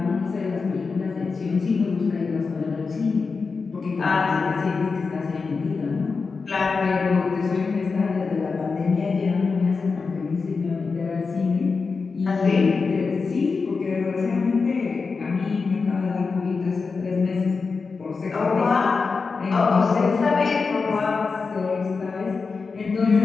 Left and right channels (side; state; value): right; quieter; 4.7 dB